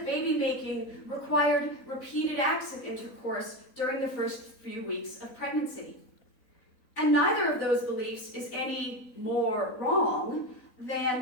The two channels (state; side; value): late; right; 4.0 ms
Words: baby making required repeated acts of intercourse during the first few weeks of pregnancy. And neither of those beliefs is any more wrong